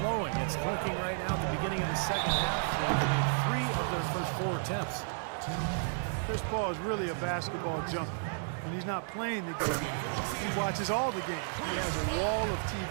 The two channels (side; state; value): left; silent; 56 dB below the other